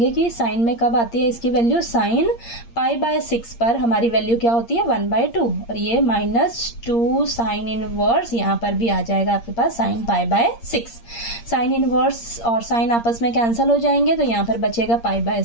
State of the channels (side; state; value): right; late; 8.6 ms